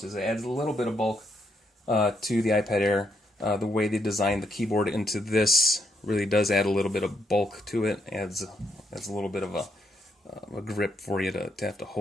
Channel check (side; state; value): both; normal; correlation 0.77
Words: It adds a little bit of bulk to the iPad Air. The way they designed the keyboard into this really does add a little bit of bulk to it. Adds a little bit of a grip for you to have to